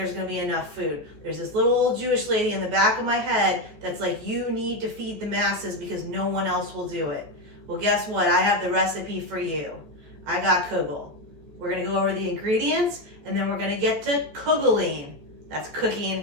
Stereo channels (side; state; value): left; late; 14 ms